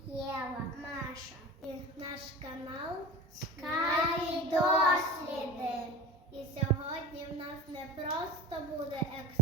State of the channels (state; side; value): normal; both; correlation 0.33